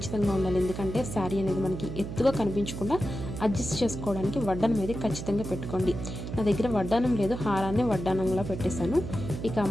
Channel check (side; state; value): right; noise; hum, 7 dB below the sound